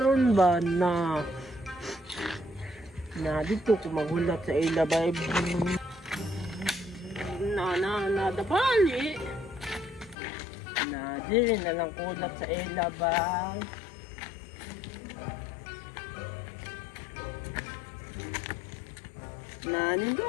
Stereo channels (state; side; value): drops out; right; at 10.2 s